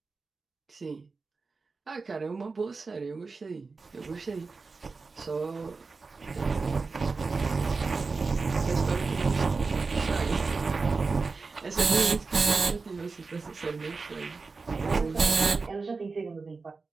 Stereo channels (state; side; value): quieter; left; 4.2 dB